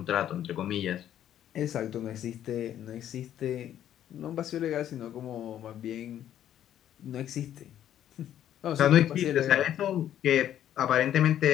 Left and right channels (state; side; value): quieter; right; 11.0 dB